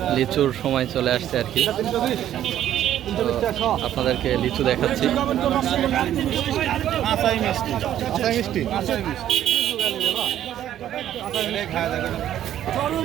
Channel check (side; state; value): left; quieter; 11.5 dB